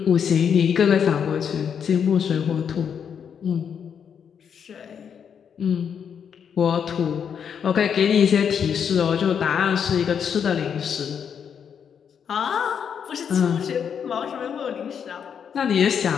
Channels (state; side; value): quieter; right; 7.6 dB